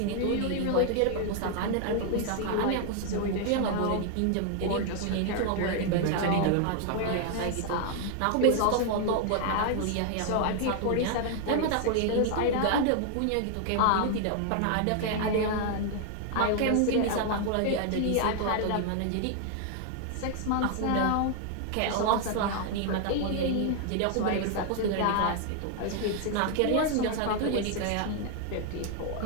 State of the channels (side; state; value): both; different; correlation 0.00